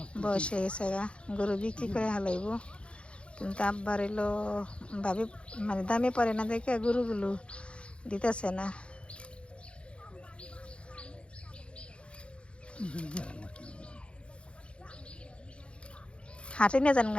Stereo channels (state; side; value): late; right; 0.058 ms